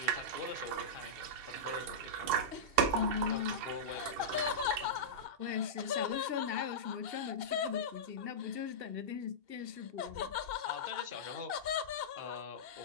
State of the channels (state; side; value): late; left; 2.7 ms